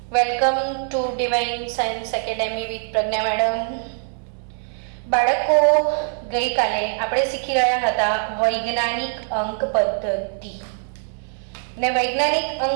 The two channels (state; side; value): silent; left; 59 dB below the other